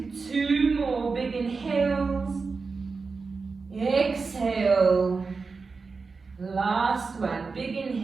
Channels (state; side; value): quieter; left; 4.5 dB